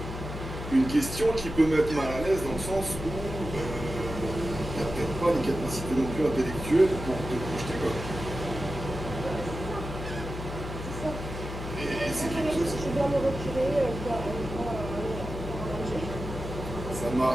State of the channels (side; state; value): left; noise; hum, 7 dB below the sound